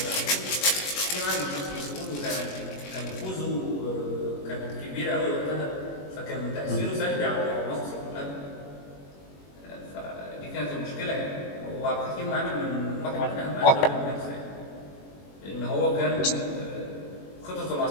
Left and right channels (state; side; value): late; right; 21 ms